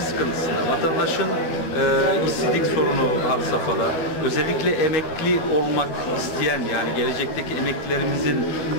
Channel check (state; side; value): late; right; 12 ms